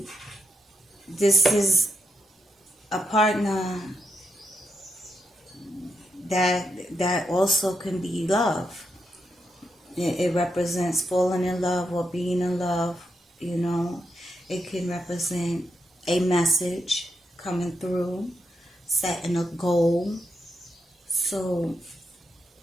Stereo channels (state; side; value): normal; both; correlation 0.83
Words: this is a partner that also can be love. It represents falling in love or being in love, It can represent a message coming through, setting a goal. So